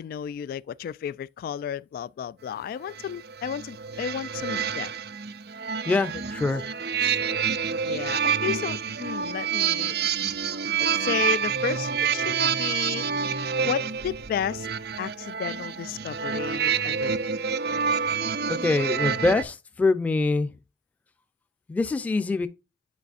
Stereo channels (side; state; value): both; normal; correlation 0.23